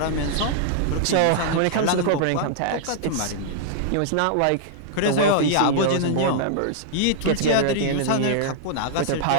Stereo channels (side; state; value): both; different; correlation -0.01